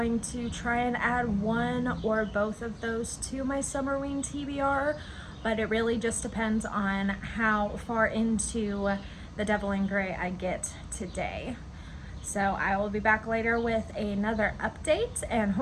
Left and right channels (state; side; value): identical; both; correlation 1.00